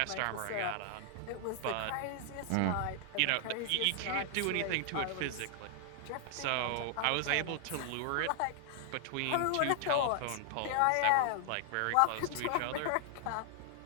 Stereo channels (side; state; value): both; different; correlation 0.00